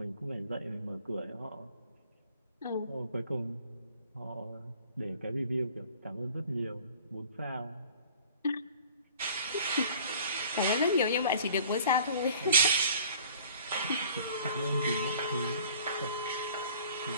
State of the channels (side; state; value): both; inverted; correlation -0.50